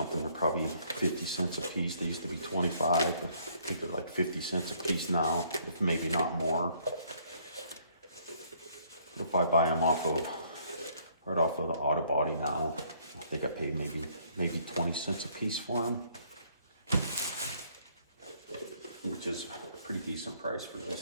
they're probably 50 cents a piece. They used to be 25. I think they're like 50 cents a piece now, if maybe not more. If I buy them right off of the auto body now, I think I pay maybe 20 cents a piece for them, which is a pretty decent price for these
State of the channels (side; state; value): both; inverted; correlation -0.64